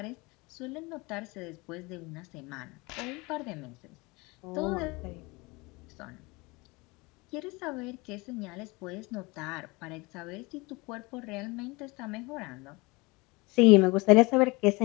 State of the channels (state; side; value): quieter; right; 25.1 dB